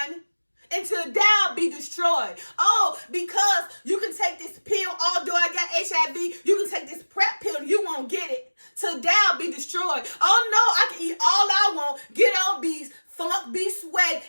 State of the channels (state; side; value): inverted; both; correlation -1.00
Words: until thou be destroyed. Oh, because you can take this pill, although I got HIV, you can take this PrEP pill and you won't get it. Till thou be destroyed. Oh no, I can eat all I want, get obese, funk, be sweat,